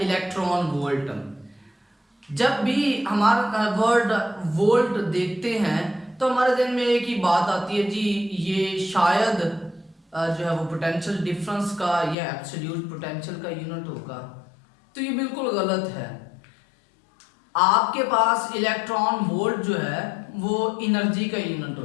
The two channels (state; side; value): drops out; right; at 12.2 s